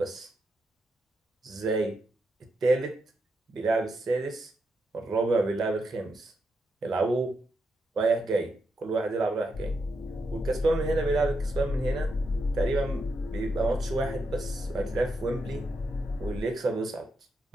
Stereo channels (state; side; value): normal; both; correlation 0.83